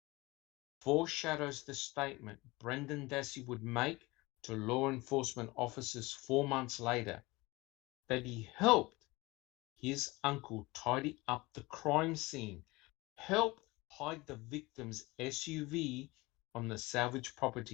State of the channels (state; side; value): quieter; right; 22.3 dB